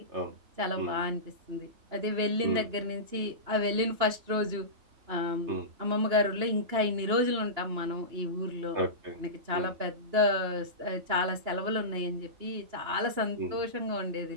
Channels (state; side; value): late; left; 2.9 ms